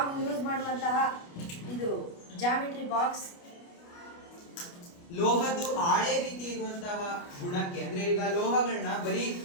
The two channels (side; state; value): right; late; 29 ms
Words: ಯೂಸ್ ಮಾಡುವಂತಹ ಇದು ಜಾಮಿಟ್ರಿ ಬಾಕ್ಸ್. ಲೋಹದ್ದು ಹಾಳೆ ರೀತಿ ಇರುವಂತಹ ಗುಣಕ್ಕೆ, ಅಂದ್ರೆ ಈಗ ಲೋಹಗಳನ್ನ ಬರೀ